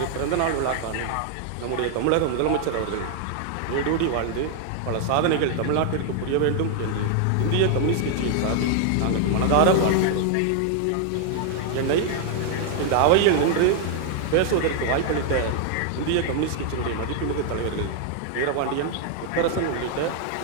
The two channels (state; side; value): different; both; correlation 0.00